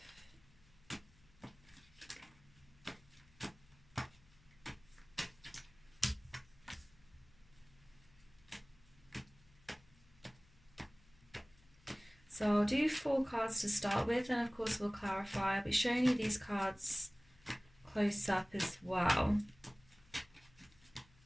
So I'll do 4 cards to start with, and of course we'll clarify. I'll be showing you these cards close up as well.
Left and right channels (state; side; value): noise; left; hum, 27 dB below the sound